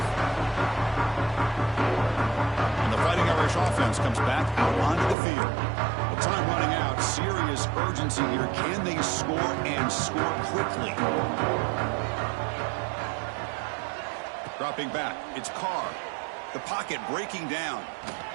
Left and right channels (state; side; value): drops out; left; at 5.2 s